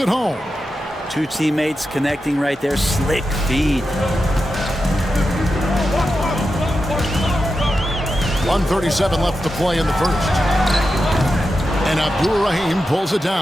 home. 2 teammates connecting right there. Slick feed. 1:37 left to play in the first. And Abdur-Rahim pulls it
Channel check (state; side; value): normal; both; correlation 0.90